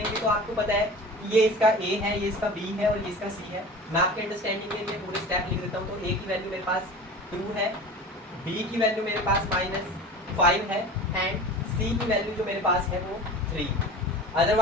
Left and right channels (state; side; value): normal; both; correlation 0.37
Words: तो आपको पता है कि ये इसका A है, ये इसका B है और ये इसका C है। मैं आपके अंडरस्टैंडिंग के लिए पूरे स्टेप लिख देता हूँ। तो A की वैल्यू मेरे पास 2 है, B की वैल्यू मेरे पास -5 है एंड C की वैल्यू जो मेरे पास है वो 3।